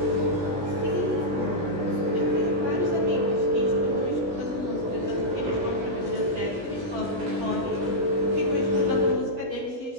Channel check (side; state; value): left; late; 17 ms